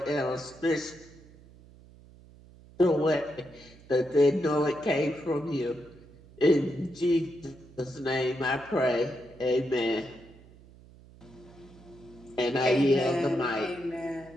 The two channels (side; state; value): right; noise; hum, 23 dB below the sound